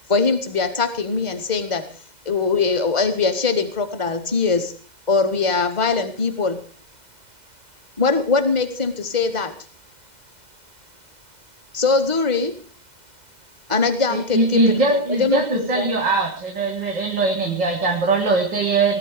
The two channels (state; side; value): late; left; 2.0 ms